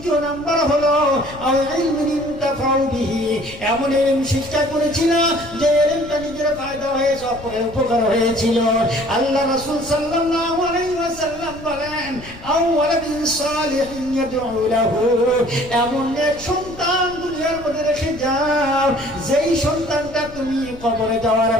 নাম্বার হলো আও ইলমিন ইনতাফাউ বিহি, এমন ইলম শিক্ষা করেছিল যে ইলমটা নিজের ফায়দা হয়েছে, অপরের উপকার হয়েছিল। আল্লাহ রাসূল সাল্লাল্লাহু আলাইহি ওয়াসাল্লাম বলেন আও ওয়ালাদিন সালিহিন ইয়াদউ লাহু, এমন এক সন্তান দুনিয়ার মধ্যে রেখে যাও যেই সন্তানটা তুমি কবরে যাওয়ার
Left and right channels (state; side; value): noise; left; rumble, 17 dB below the sound